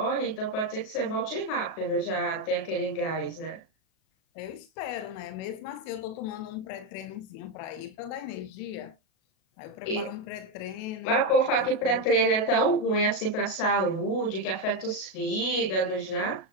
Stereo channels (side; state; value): right; late; 37 ms